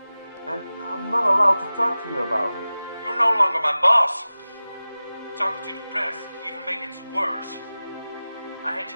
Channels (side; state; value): both; inverted; correlation -0.96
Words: And I'm not allowed to talk to you about it. You're no longer my boss. Talking to the press even makes it worse. I hate